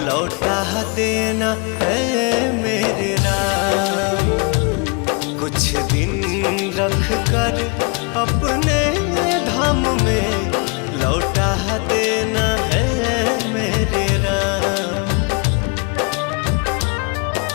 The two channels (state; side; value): quieter; right; 32.4 dB